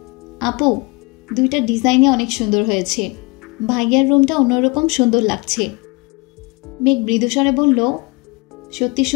আপু, দুইটা ডিজাইনে অনেক সুন্দর হয়েছে, ভাইয়ার রুমটা অন্যরকম সুন্দর লাগছে। মেঘ মৃদুস্বরে বলল, সত্যি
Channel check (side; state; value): right; quieter; 26.6 dB